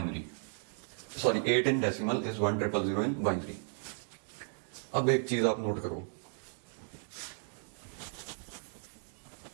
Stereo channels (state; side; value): silent; left; 55 dB below the other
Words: sorry 8 in decimal is 1 triple 0 in binary. अब एक चीज आप नोट करो,